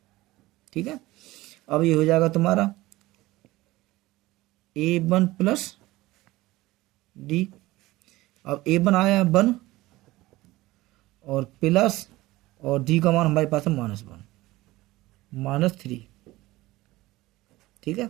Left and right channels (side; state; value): left; quieter; 18.6 dB